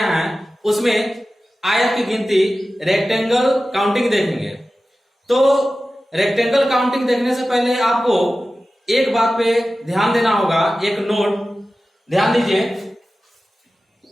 हैं उसमें आयत की गिनती, रेक्टेंगल काउंटिंग देखेंगे। तो रेक्टेंगल काउंटिंग देखने से पहले आपको एक बात पे ध्यान देना होगा, एक नोट ध्यान दीजिए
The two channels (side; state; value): both; normal; correlation 0.95